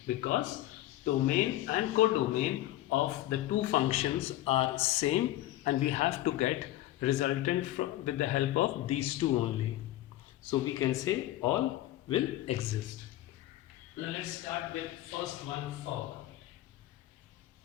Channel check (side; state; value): right; quieter; 15.0 dB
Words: because domain and codomain of the two functions are same, and we have to get resultant with the help of these two only. So we can say all will exist. Now let's start with first one, for.